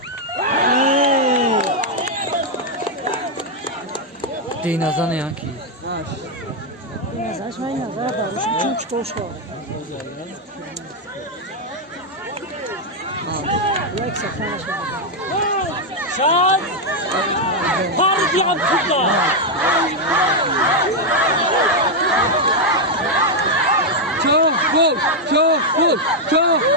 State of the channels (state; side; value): normal; both; correlation 0.00